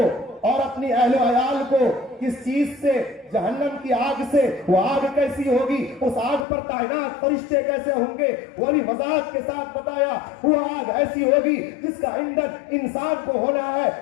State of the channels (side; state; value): right; drops out; at 6.5 s